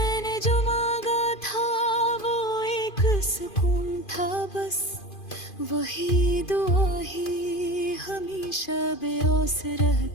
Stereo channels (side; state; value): right; late; 2.5 ms